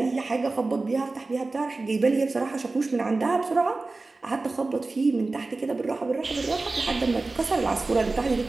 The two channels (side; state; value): left; quieter; 3.5 dB